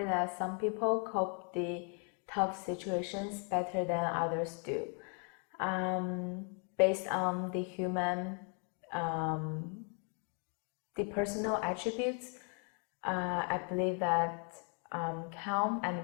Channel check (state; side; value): quieter; right; 39.9 dB